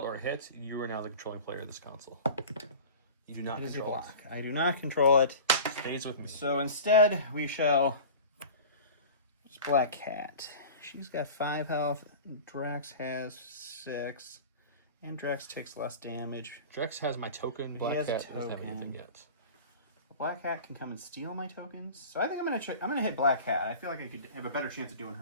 or a hit, you are now the controlling player of this console. You do not It is your control block. I do not control it. it. Stays with me. So instead, we shall... It's Black Cat. She's got 5 health. Drax has 6. And Drax takes less damage. Drax has my token. Black has a Cat doesn't have token. anything yet. Black Cat can come and steal my tokens. So I think I'm gonna hit Black Cat. I feel like I could have a better chance of doing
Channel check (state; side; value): inverted; both; correlation -0.37